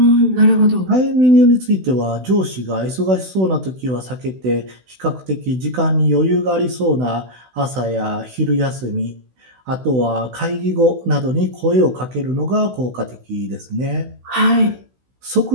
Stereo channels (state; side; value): late; left; 16 ms